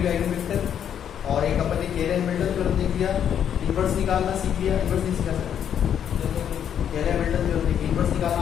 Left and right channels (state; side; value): quieter; right; 9.0 dB